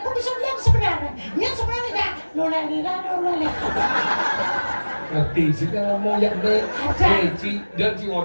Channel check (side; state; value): both; inverted; correlation -1.00